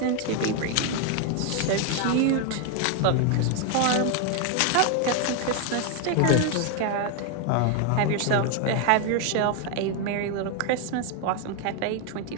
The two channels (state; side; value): different; both; correlation 0.01